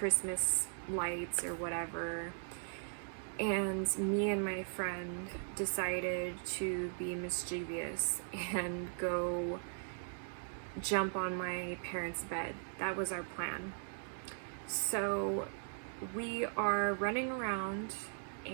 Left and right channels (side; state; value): left; silent; digital silence